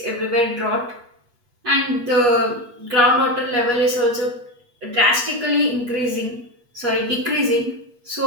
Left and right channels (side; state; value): left; late; 8.3 ms